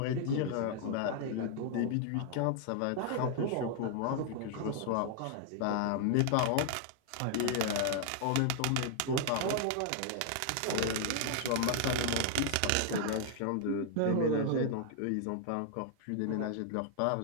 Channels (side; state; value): both; different; correlation 0.00